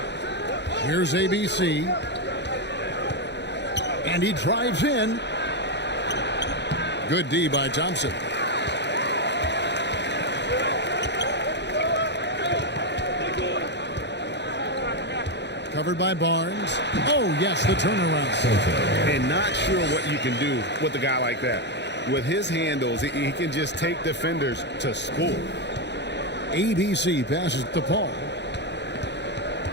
Here's ABC. And he drives in. Good D by Thompson. Covered by Barnes. Oh, yes, the turnaround. And not sure what you can do with a guy like that. With his handles, he can just take defenders to score. ABC passes to Paul.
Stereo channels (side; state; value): right; late; 0.50 ms